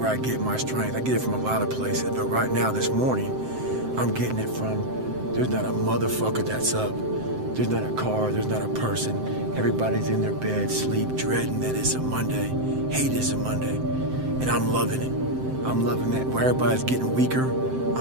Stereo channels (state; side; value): late; left; 7.7 ms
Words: I get my strength. I get it from a lot of places, but right now, this morning, I'm getting it from, there's not a motherfucker that's up. There's not a car, there's not a person. Everybody's in their bed, sleep, dreading that it's a Monday, hate it's a Monday. And I'm loving it. I'm loving that. Where everybody's getting weaker,